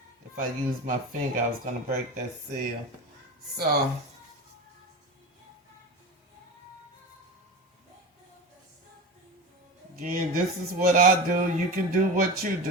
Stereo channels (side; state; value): both; normal; correlation 0.28